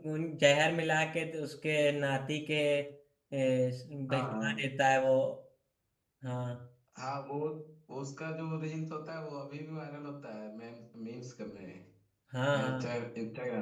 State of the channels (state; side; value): identical; both; correlation 1.00